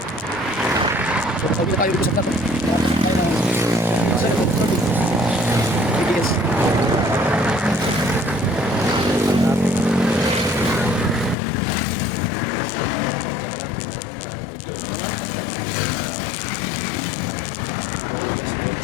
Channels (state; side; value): drops out; right; at 11.4 s